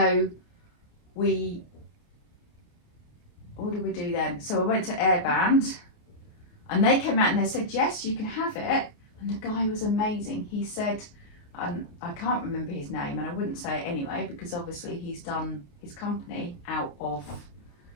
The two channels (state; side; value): late; right; 28 ms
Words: what did we do then? So I went to Airband, and they came out and they said, yes, you can have it. And the guy was amazing. He said, and I can't remember his name, and I wouldn't say it anyway, because obviously he's done his company out of